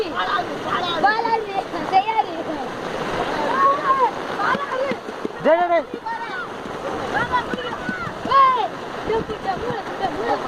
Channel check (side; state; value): both; identical; correlation 1.00